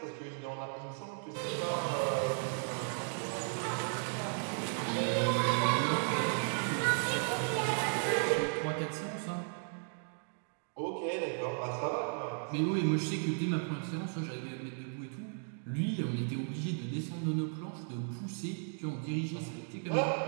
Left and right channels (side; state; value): left; silent; 54 dB below the other